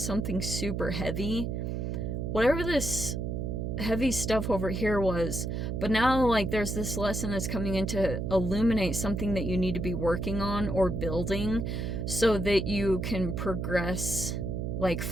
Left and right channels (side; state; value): right; noise; hum, 2 dB below the sound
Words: something super heavy. Whatever this heavy stuff over here was, but now like there's this lesson that's coming in to illuminate something that you need to be working on or building so that you can progress like